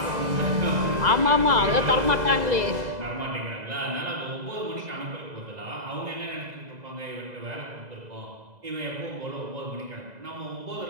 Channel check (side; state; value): left; late; 2.0 ms